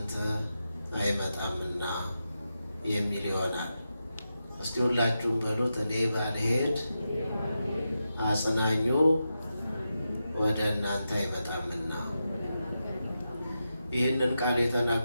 አይመጣምና የሚል ይሆናል። እስቲ ሁላችሁም በሉት፣ እኔ ባልሄድ አጽናኙ ወደ እናንተ አይመጣምና። ይህንን ቃል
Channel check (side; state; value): both; inverted; correlation -0.89